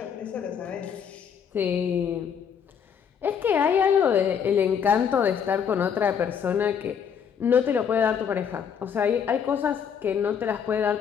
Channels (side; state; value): right; quieter; 7.5 dB